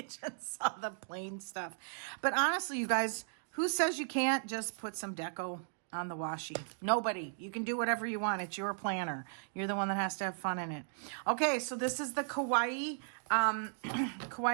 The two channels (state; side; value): silent; left; digital silence